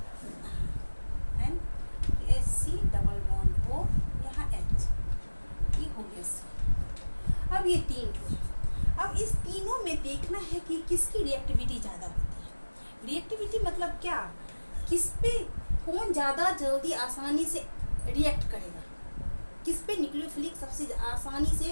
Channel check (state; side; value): inverted; both; correlation -1.00